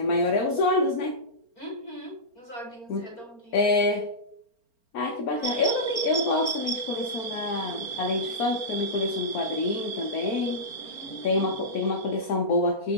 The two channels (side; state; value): right; late; 4.4 ms